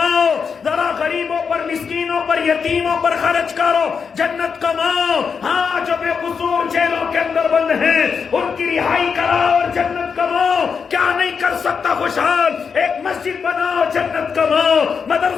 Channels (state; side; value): quieter; right; 6.0 dB